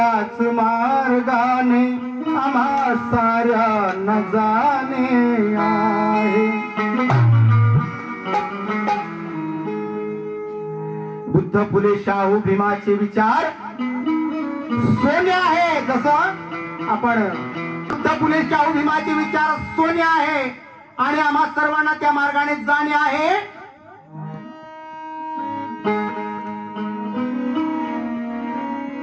मार्गाने आम्हा साऱ्यांना जाणे आहे। बुद्ध फुले शाहू भीमाचे विचार सोने आहे। जसं आपण बुद्ध फुले शाहू भीमाचे विचार सोने आहे आणि आम्हा सर्वांना त्या मार्गाने जाणे आहे।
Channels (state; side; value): identical; both; correlation 1.00